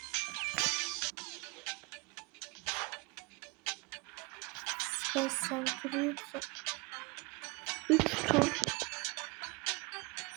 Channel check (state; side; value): quieter; left; 26.8 dB